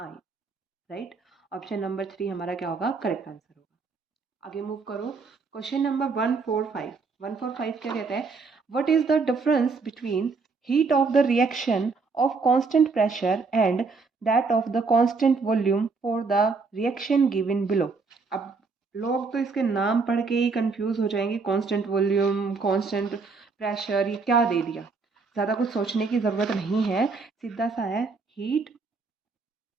राइट। ऑप्शन नंबर 3 हमारा क्या होगा? करेक्ट आंसर होगा। आगे मूव करो, क्वेश्चन नंबर 145। 145 क्या कहता है? What is the difference between heat of the reaction of constant pressure and that of the constant volume for the reaction given below. अब लोग तो इसके नाम पढ़ के ही कंफ्यूज हो जाएंगे, कांस्टेंट वॉल्यूम, कांस्टेंट प्रेशर, ये क्या दे दिया। ज़्यादा कुछ सोचने की ज़रूरत नहीं है, सीधा सा है, हीट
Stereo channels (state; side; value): quieter; left; 4.4 dB